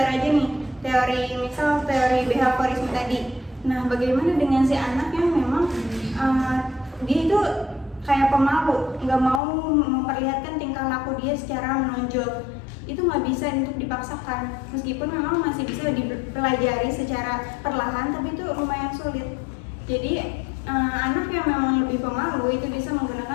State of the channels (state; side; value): drops out; right; at 9.4 s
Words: aja nih, misal teori behaviorisme tadi. Nah, bagaimana dengan si anak yang memang dia itu kayak pemalu, nggak mau memperlihatkan tingkah laku dia secara menonjol. Itu nggak bisa untuk dipaksakan, meskipun memang masih bisa dipelajari secara perlahan, tapi itu lumayan sulit. Jadi anak yang memang lebih pemalu itu bisa